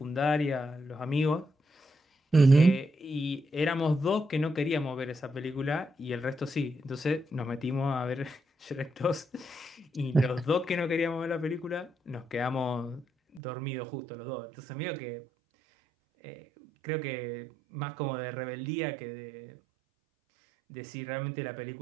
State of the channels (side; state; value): left; drops out; at 13.4 s